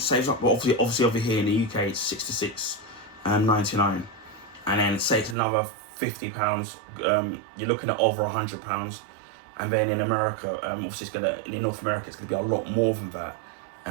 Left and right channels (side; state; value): left; drops out; at 5.4 s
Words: well, obviously over here in the UK it's $66.99, and then say it's another £50, you're looking at over £100. And then in America, obviously in North America it's gonna be a lot more than that,